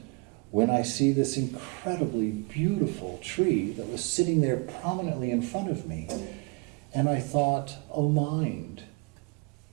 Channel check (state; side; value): quieter; left; 29.6 dB